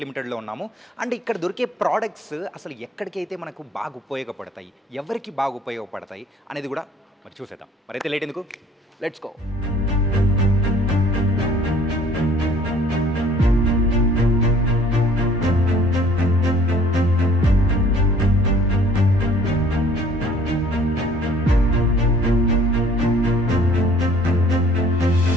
లిమిటెడ్లో ఉన్నాము. అండ్ ఇక్కడ దొరికే ప్రోడక్ట్స్ అసలు ఎక్కడికైతే మనకు బాగా ఉపయోగపడతాయి, ఎవరికి బాగా ఉపయోగపడతాయి అనేది కూడా మరి చూసేద్దాం. మరైతే లేట్ ఎందుకు, లెట్స్ గో.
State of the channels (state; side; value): normal; both; correlation 0.55